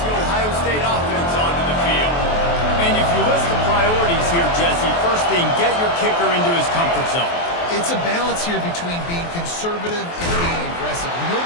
the Ohio State offense onto the field. And if you list the priorities here, Jesse, first thing, get your kicker into his comfort zone. It's a balance here between being conservative and being aggressive. You know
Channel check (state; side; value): late; right; 23 ms